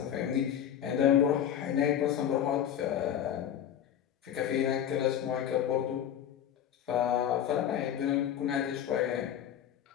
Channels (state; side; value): quieter; right; 9.9 dB